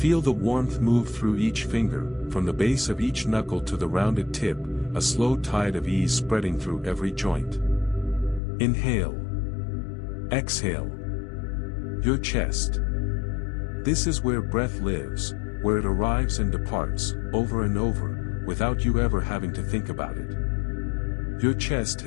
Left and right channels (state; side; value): drops out; right; at 8.4 s